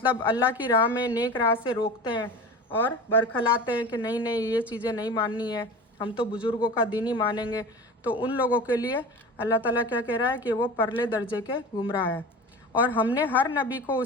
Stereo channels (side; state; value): both; normal; correlation 0.33